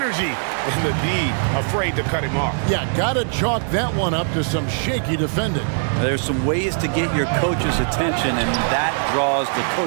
and the D afraid to cut him off. Yeah, gotta chalk that one up to some shaky defending. There's some ways to get your coach's attention, and that draws the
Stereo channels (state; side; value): silent; left; digital silence